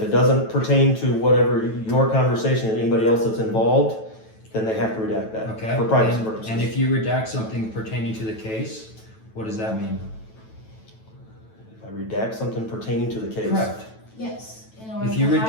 it doesn't pertain to whatever your conversation and anybody else that's involved, then they have to redact that Okay. for privacy purposes. And if you redact something pertaining to the case, what does that mean? If I redact something pertaining to the case. Correct. Yes. In order If you to hide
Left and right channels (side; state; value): right; late; 9.1 ms